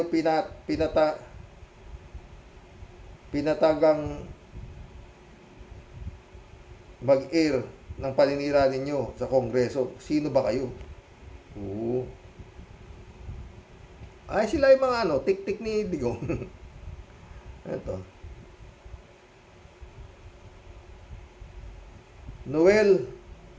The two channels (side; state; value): both; identical; correlation 1.00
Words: pinatagang mag-air ng paninira ninyo sa Kongreso? Sino ba kayo? Oo. Ay, sila yung mga tik-tik ni Digong. Ito. Noel